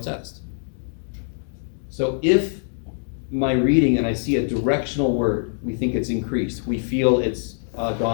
So if my reading and I see a directional word, we think it's increased, we feel it's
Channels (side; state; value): right; silent; digital silence